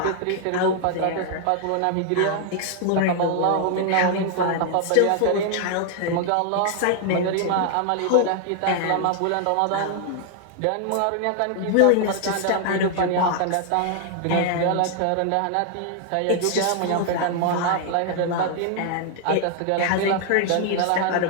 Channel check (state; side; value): different; both; correlation 0.00